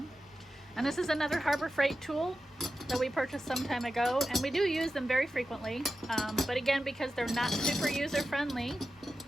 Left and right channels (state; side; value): normal; both; correlation 0.92